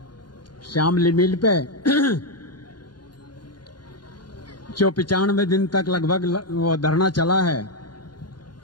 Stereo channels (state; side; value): late; right; 0.71 ms